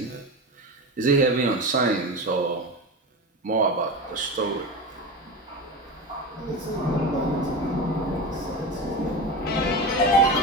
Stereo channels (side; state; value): both; normal; correlation 0.24